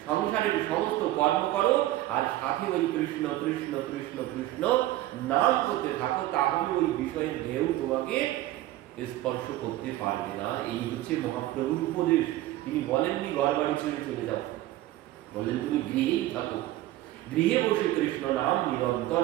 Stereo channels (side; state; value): left; quieter; 15.5 dB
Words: সংসারের সমস্ত কর্ম করো আর সাথে ওই কৃষ্ণ কৃষ্ণ কৃষ্ণ কৃষ্ণ নাম করতে থাকো, তাহলে ওই বিষয়ের ঢেউ তোমাকে স্পর্শ করতে পারবে না। এই হচ্ছে মহাপ্রভুর উপদেশ। তিনি বলেননি ঘর বাড়ি ছেড়ে চলে যাও, বললেন তুমি গৃহেই থাকো, গৃহে বসে কৃষ্ণ নাম নিরন্তর